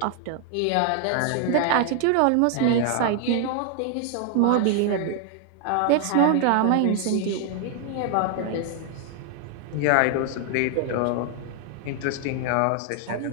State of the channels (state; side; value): different; both; correlation 0.00